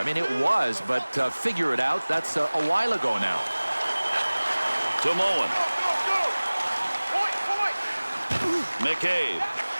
mean, it was, but figure it out. That's a while ago now. To Moen. McCabe.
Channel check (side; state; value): both; inverted; correlation -1.00